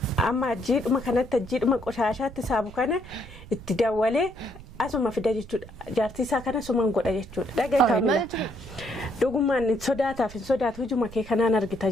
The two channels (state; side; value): noise; right; rumble, 16 dB below the sound